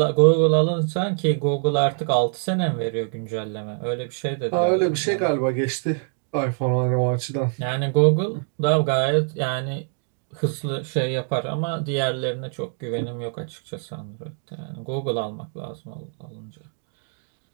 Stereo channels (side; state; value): left; silent; 58 dB below the other